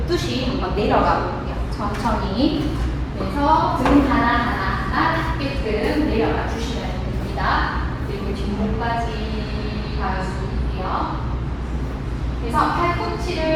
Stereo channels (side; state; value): both; identical; correlation 1.00